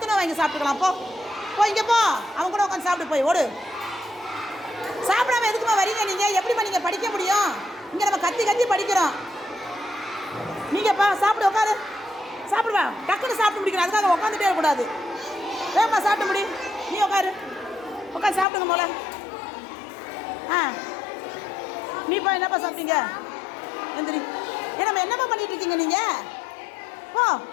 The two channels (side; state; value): right; drops out; at 18.4 s